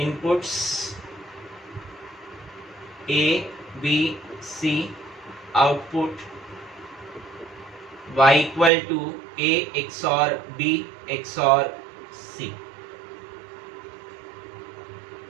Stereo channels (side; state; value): left; drops out; at 8.7 s